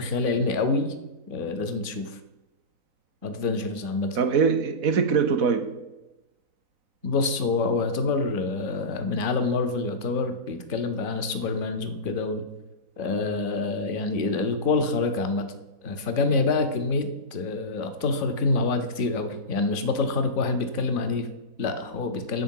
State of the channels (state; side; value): late; left; 3.5 ms